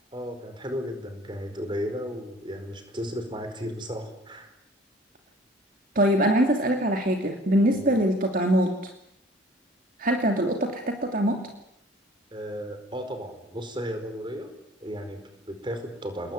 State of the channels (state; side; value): normal; both; correlation 0.51